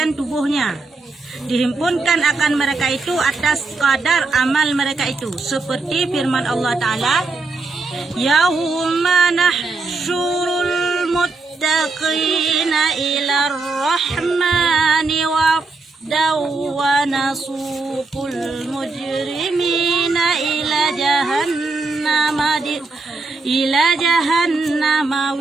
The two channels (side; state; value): left; quieter; 3.7 dB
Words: tubuhnya. Dihimpunkan akan mereka itu atas kadar amal mereka itu. Seperti firman Allah Ta'ala, Yawma nahsyurul muttaqina ila rahmani wafdaw wa nasuqul mujrimina ila jahannama